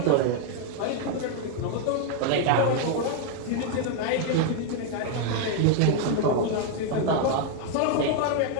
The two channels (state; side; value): different; both; correlation 0.00